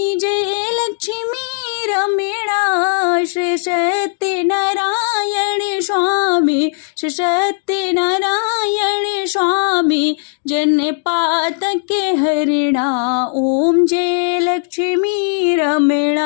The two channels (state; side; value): silent; right; 68 dB below the other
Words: जय लक्ष्मी रमणा, श्री सत्यनारायण स्वामी, श्री सत्यनारायण स्वामी, जन पातके हरिणा। ओम जय लक्ष्मी